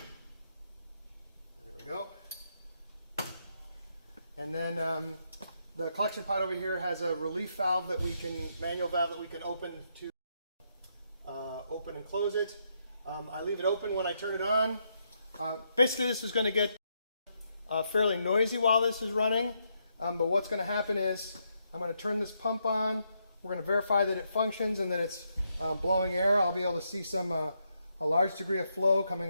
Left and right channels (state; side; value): inverted; both; correlation -0.79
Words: we go. And then the collection pot over here has a relief valve that we can, manual valve that we can open to open and close it. I leave it open when I turn it on. Basically this is going to get fairly noisy while this is running, but what's going to happen is I'm going to turn this pump on. We're going to verify that it functions and that it's blowing air. I'll be able to see a large degree of flow